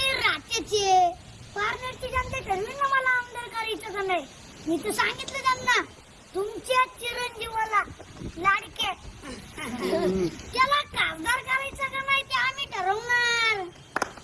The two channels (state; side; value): identical; both; correlation 1.00